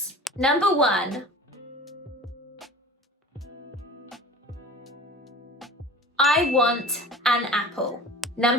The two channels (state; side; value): normal; both; correlation 0.40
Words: Number 1. I want an apple.